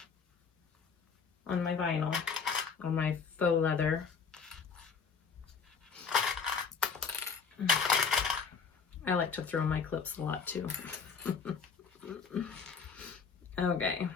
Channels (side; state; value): right; quieter; 5.7 dB